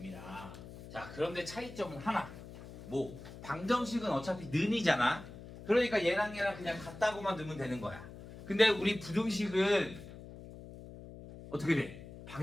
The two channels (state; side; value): noise; left; hum, 15 dB below the sound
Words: 자, 그런데 차이점은 하나. 뭐 방정식은 어차피 는이잖아. 그러니까 얘랑 그냥 같다고만 넣으면 되는 거야. 근데 우리 부등식은 어떻게 돼?